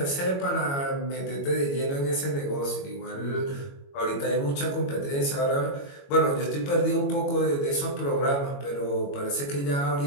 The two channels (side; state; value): right; late; 22 ms